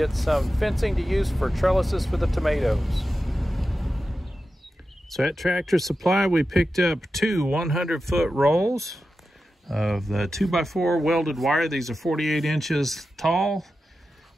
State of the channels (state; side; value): normal; both; correlation 0.92